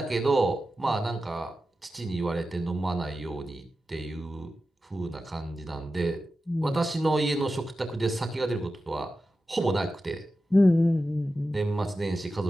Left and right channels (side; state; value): both; normal; correlation 0.92